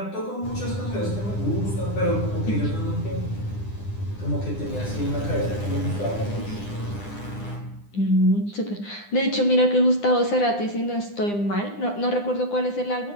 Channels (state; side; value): late; right; 9.8 ms